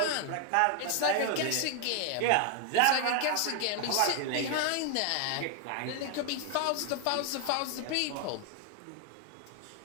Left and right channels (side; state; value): both; different; correlation 0.00